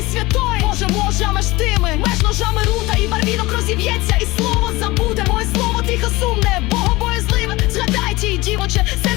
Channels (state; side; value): quieter; right; 20.9 dB